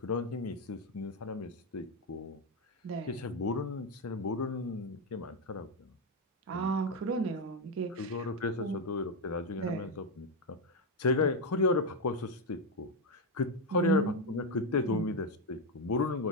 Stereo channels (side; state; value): both; normal; correlation 0.06